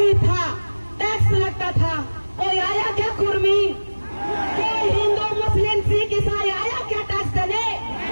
था, टैक्स लगता था। कोई आया क्या कुर्मी? कोई हिंदू मुस्लिम सिख ईसाई आया क्या टैक्स देने?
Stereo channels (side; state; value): both; inverted; correlation -1.00